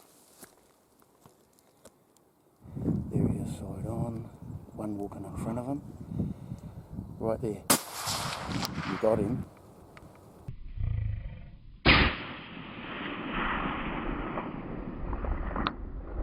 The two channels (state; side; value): identical; both; correlation 1.00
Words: There he is, side on. One walking in front of him. Right there. You got him.